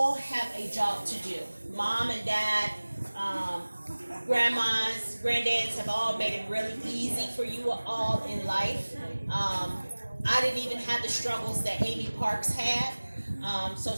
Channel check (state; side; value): inverted; both; correlation -1.00